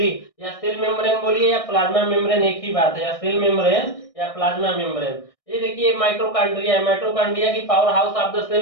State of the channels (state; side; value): late; right; 1.6 ms